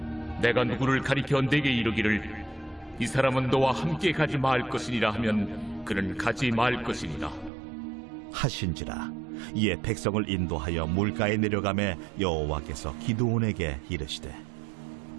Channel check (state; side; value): drops out; left; at 7.5 s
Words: 내가 누구를 가리켜 내게 이르기를 이 사람은 너와 함께 가지 말 것이니라 하면 그는 가지 말 것이니라 하신지라. 이에 백성을 인도하여 물가에 내려가매 여호와께서 기드온에게 이르시되